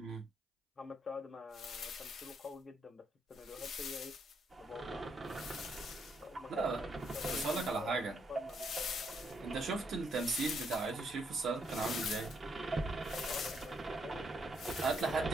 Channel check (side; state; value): both; normal; correlation 0.75